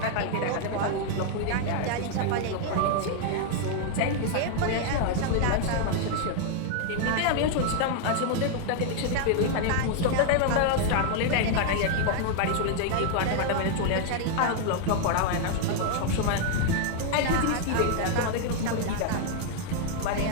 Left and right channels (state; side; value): different; both; correlation 0.00